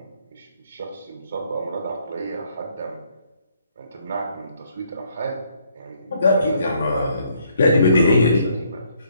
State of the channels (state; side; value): inverted; both; correlation -0.68